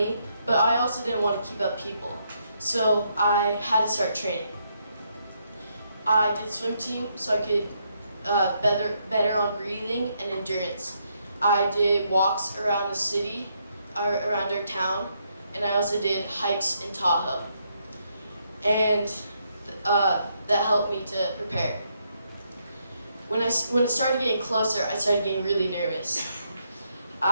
but I also didn't want to keep up people. So I had to start training. I did swim team so I could better on breathing and endurance. I did walks around the city, around our town, and I also did hikes in Tahoe. And that helped me to prepare. When it started getting closer, I started getting really nervous.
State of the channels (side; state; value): both; inverted; correlation -0.76